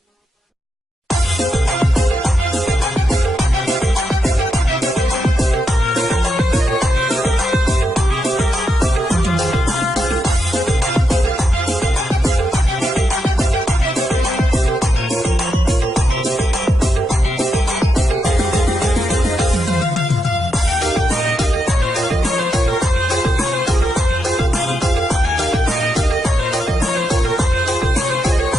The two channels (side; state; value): both; normal; correlation 0.83